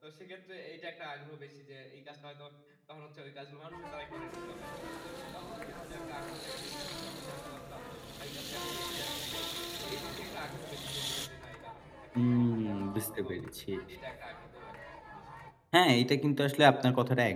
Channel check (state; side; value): identical; both; correlation 1.00